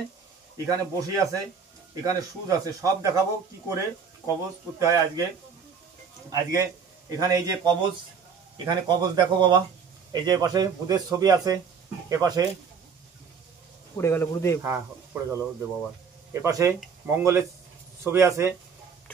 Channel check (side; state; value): left; quieter; 6.1 dB